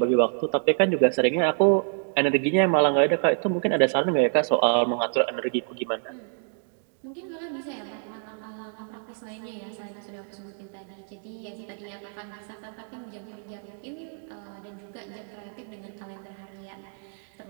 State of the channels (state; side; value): silent; left; 58 dB below the other